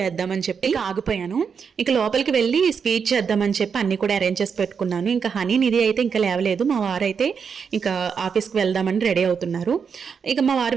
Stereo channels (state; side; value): quieter; left; 6.3 dB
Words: చెప్పి ఆగిపోయాను. ఇంకా లోపలికి వెళ్ళి స్వీట్ చేద్దామని చెప్పి అన్ని కూడా అరేంజ్ చేసి పెట్టుకున్నాను. ఇంకా హనీ నిధి అయితే ఇంకా లేవలేదు. మా వారు అయితే ఇంకా ఆఫీస్కి వెళ్దామని రెడీ అవుతున్నారు. ఇక మా వారు